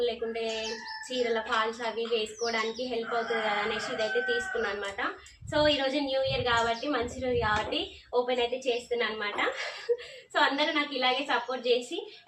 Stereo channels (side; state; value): both; identical; correlation 1.00